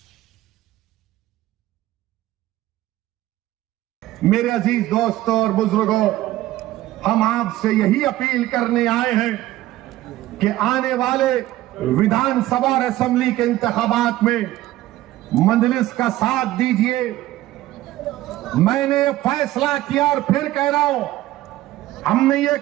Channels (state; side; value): quieter; left; 15.6 dB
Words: मेरे अजीज दोस्तों और बुजुर्गों, हम आपसे यही अपील करने आए हैं कि आने वाले विधानसभा और असेंबली के इंतखाबात में मजलिस का साथ दीजिए। मैंने ये फैसला किया और फिर कह रहा हूं, हमने ये